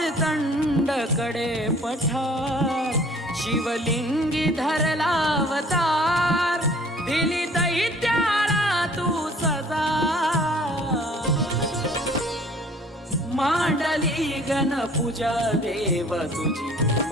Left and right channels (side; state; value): both; normal; correlation 0.53